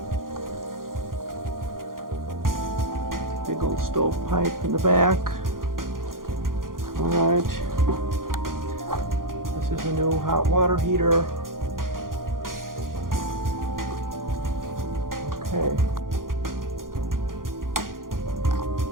Big old stove pipe in the back. Alright. This is a new hot water heater. Okay.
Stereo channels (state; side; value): late; left; 0.91 ms